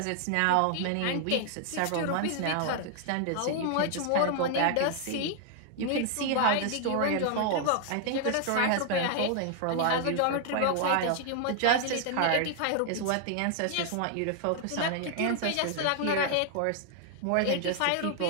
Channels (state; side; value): different; both; correlation 0.00